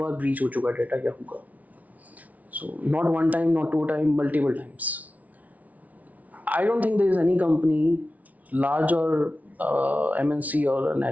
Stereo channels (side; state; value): left; late; 0.072 ms